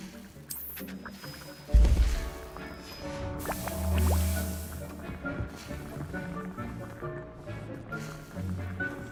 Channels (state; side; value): identical; both; correlation 1.00